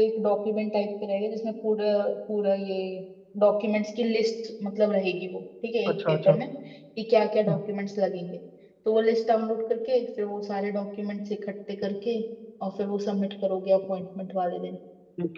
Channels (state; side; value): identical; both; correlation 1.00